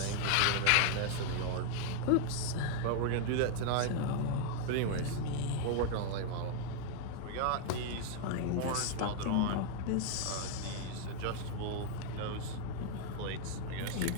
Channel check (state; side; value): different; both; correlation 0.00